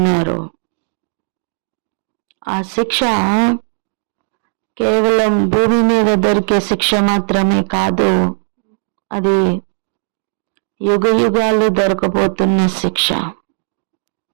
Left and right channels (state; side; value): silent; left; digital silence